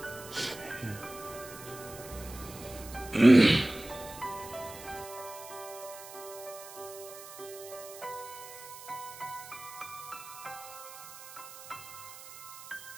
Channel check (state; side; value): noise; right; hiss, 15 dB below the sound